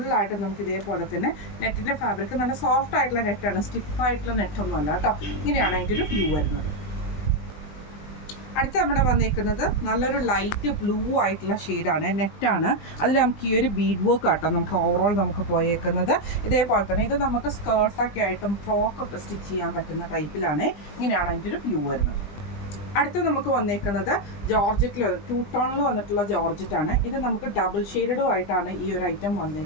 നമുക്ക് ഇതേപോലെ തന്നെ നെറ്റിൻ്റെ ഫാബ്രിക് നല്ല സോഫ്റ്റ് ആയിട്ടുള്ള നെറ്റാണ്, സ്റ്റിഫായിട്ടുള്ള നെറ്റൊന്നും അല്ല കേട്ടോ. ഇങ്ങനെയാണ് അതിൻ്റെ ഒരു വ്യൂ വരുന്നത്. അടുത്ത് നമ്മുടെ വന്നിരിക്കുന്നത് നല്ലൊരു ലൈറ്റ് ബ്ലൂ ആയിട്ടുള്ള ഷെയ്ഡാണ്, നെറ്റാണ്. അതിൽ നമുക്ക് ഈ ഒരു ബീഡ് വർക്ക് ആട്ടോ നമുക്ക് ഓവറോൾ നമുക്ക് പോയേക്കുന്നത്. ഇതേപോലെ തന്നെ ഇത് നമുക്ക് സ്കേർട്ടൊക്കെ ആയിട്ടും ഫ്രോക്കൊക്കെ സ്റ്റിച്ച് ചെയ്യാൻ പറ്റുന്ന ടൈപ്പിലാണ്. ഇങ്ങനെയാണ് അതിൻ്റെ ഒരു വ്യൂ വരുന്നത്. അടുത്ത് നമുക്ക് വന്നേക്കുന്നത് ജോർജറ്റിൽ 2 ടോണിൽ വന്നിട്ടുള്ള ജോർജറ്റാണ്. ഇത് നമുക്ക് ഡബിൾ ഷെയ്ഡും ആയിട്ടാണ് ഈ ഒരു ഐറ്റം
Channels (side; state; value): right; late; 20 ms